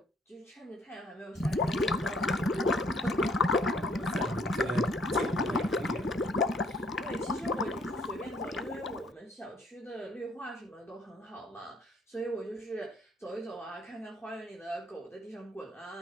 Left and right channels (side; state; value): both; normal; correlation 0.64